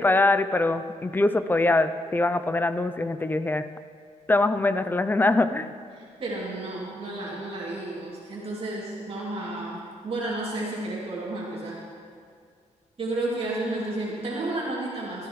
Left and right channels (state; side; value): normal; both; correlation 0.78